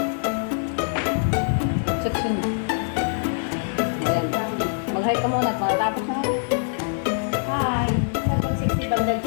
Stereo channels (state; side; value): silent; right; 58 dB below the other